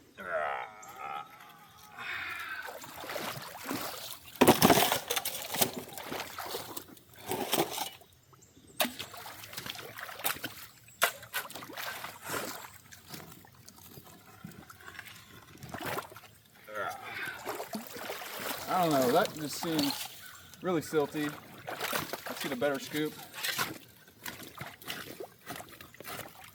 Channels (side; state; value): both; identical; correlation 1.00